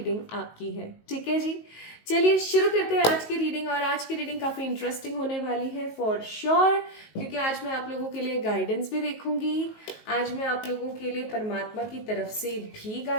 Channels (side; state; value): right; late; 19 ms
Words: आपकी है। ठीक है जी, चलिए शुरू करते हैं आज की रीडिंग। और आज की रीडिंग काफ़ी इंटरेस्टिंग होने वाली है फॉर श्योर, क्योंकि आज मैं आप लोगों के लिए गाइडेंस भी देखूंगी, आज मैं आप लोगों के लिए परमात्मा की तरफ से भी